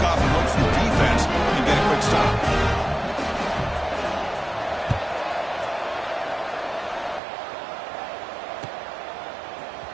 off and look for defense and get a quick stop.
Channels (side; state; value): left; drops out; at 7.2 s